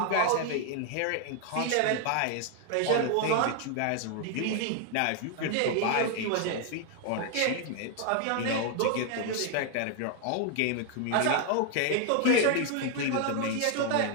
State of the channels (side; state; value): both; different; correlation 0.00